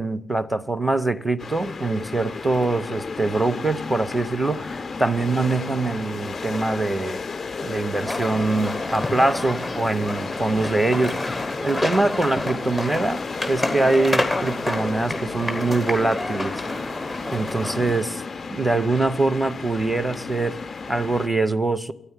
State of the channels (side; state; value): both; normal; correlation 0.89